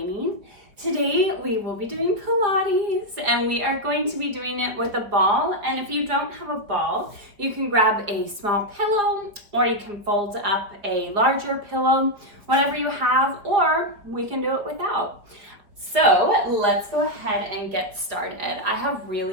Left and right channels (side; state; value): left; late; 4.7 ms